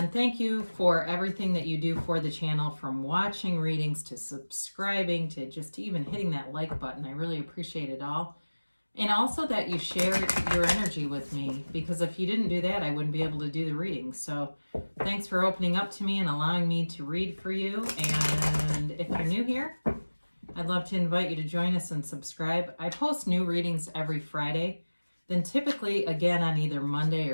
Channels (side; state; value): both; inverted; correlation -1.00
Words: thank you for everything that you do for the channel, from watching readings to subscribing to just even hitting that like button. I really appreciate it all. And also that you share your energy with me, because if you didn't do that, I wouldn't be able to do the reading. So thanks for opening up to me and allowing me to read for you. And if you're new here, I'd love to invite you to join us and subscribe. I post new readings every Friday, then typically again on either Monday